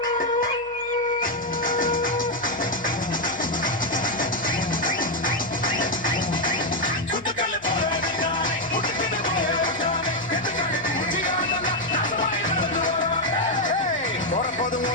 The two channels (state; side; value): noise; left; hum, 27 dB below the sound